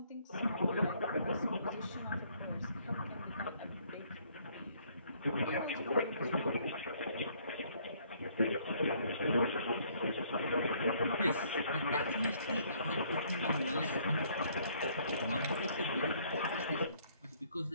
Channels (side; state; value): both; inverted; correlation -0.64